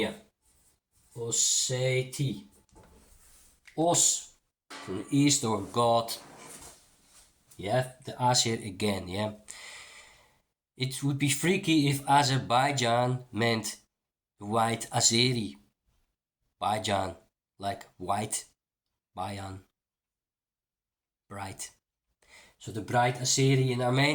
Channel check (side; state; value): both; identical; correlation 1.00